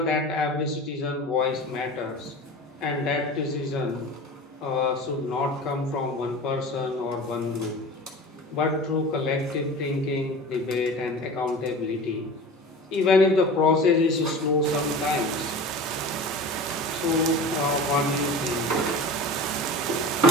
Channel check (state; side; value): normal; both; correlation 0.35